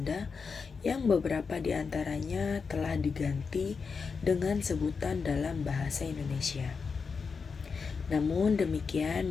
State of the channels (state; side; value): quieter; right; 5.3 dB